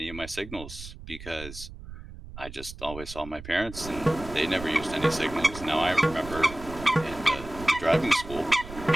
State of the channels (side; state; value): right; noise; rumble, 13 dB below the sound